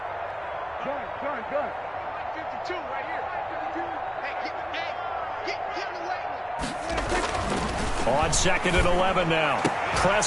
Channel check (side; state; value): both; identical; correlation 1.00